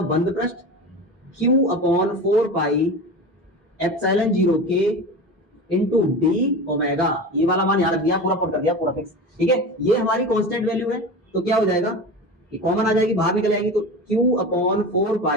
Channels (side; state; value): both; normal; correlation 0.29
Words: बंद पृष्ठ क्यू अपॉन 4 पाई एप्सिलॉन 0 के इंटू डी ओमेगा, ये वाला मान याद रख दिया, पूरा पुट कर दिया, पूरा फिक्स, ठीक है, ये हमारी कांस्टेंट वैल्यू है, तो क्या हो जाएगा, ये कॉमन आ जाएगी, बाहर निकल जाएगी, तो q अपॉन 4